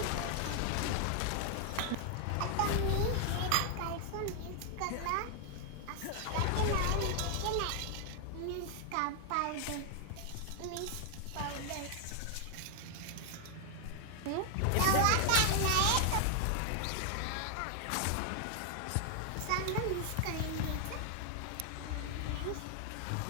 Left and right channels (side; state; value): both; different; correlation 0.00